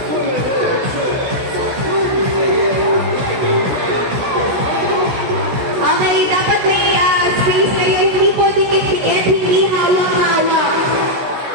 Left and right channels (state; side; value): late; left; 16 ms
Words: Okay, dapat may space kayo, hindi po dikit-dikit, hindi hawak-hawak.